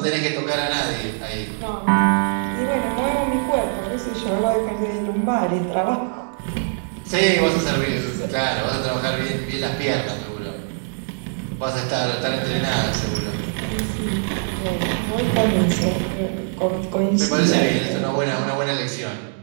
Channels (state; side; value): silent; left; digital silence